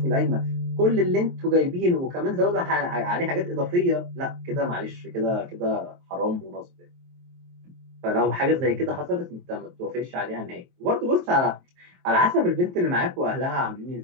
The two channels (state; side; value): late; left; 23 ms